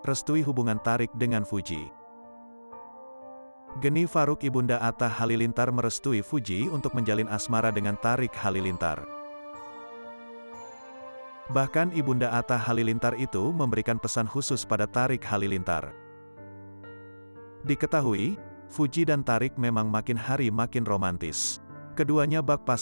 restui hubungan Tarik dengan Fuji. Geni Faruk Ibunda Atta Halilintar merestui Fuji untuk menjalin asmara dengan Tarik Halilintar. Bahkan Ibunda Atta Halilintar itu memberikan pesan khusus pada Tarik Halilintar. Diketahui, Fuji dan Tarik memang makin hari makin romantis. Keduanya bak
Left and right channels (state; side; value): inverted; both; correlation -1.00